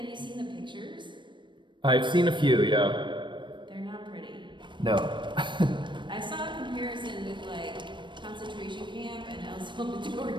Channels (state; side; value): late; left; 0.23 ms